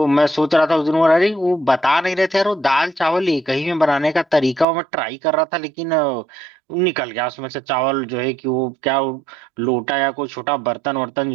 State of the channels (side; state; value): left; drops out; at 4.7 s